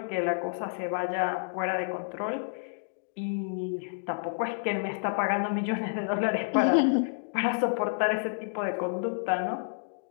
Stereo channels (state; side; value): silent; right; digital silence